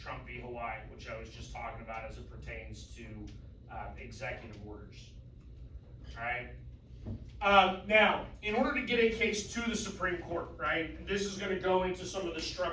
v. Hawaii, which I was just talking about as it pertains to executive orders, all right? Now, in order to get a case to the Supreme Court, right, this is gonna go into some of the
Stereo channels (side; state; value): both; identical; correlation 1.00